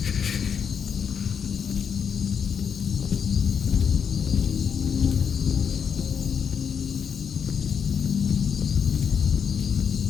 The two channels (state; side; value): quieter; right; 7.1 dB